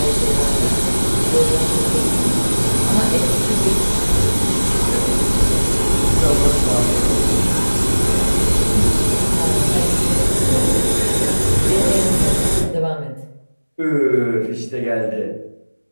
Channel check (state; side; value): inverted; both; correlation -1.00